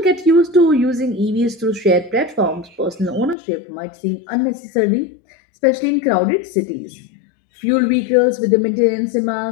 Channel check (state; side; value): drops out; right; at 3.4 s